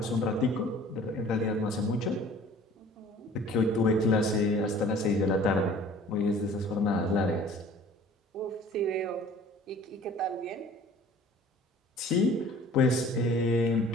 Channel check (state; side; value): normal; both; correlation 0.49